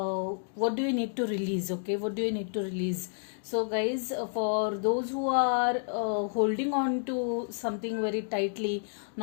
What do you need to release? Okay, what do you need to release? So, guys, for those who are holding on to something very tightly,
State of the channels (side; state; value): right; silent; digital silence